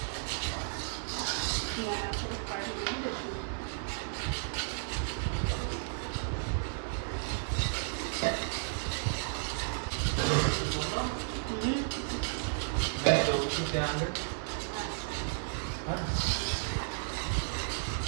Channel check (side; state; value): left; silent; digital silence